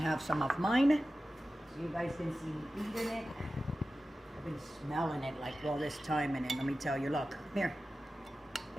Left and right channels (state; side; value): normal; both; correlation 0.94